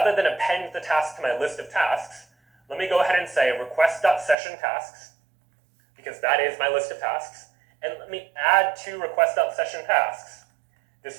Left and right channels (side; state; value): left; drops out; at 4.4 s